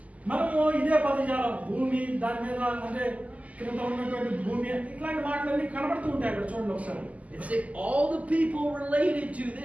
మనము ఇదే పదజాలం, భూమి, దాని మీద అంటే కింద ఉన్నటువంటి భూమి, ఇట్లాంటి మాటలన్నీ కనబడుతూ ఉంటాయి అక్కడ. చూడండి ఒకసారి. It's all the people related to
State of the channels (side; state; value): left; late; 0.072 ms